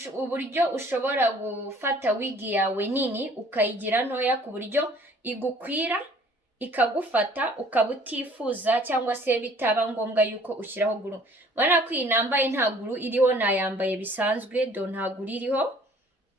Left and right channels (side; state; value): both; normal; correlation 0.54